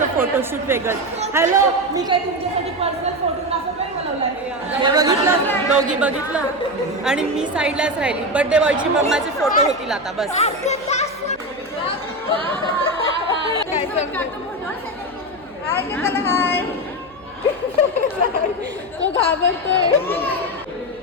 फोटोशूट वेगळं. हॅलो, मी काय तुमच्यासाठी पर्सनल फोटोग्राफर नाही बोलवला आहे. बघितलं दोघी बघितलं आणि मी साईडलाच राहिली. बर्थडे बॉयची मम्माचे फोटो होतील आता बस. हाय तो घाबरतोय.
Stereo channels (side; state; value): left; noise; hum, 26 dB below the sound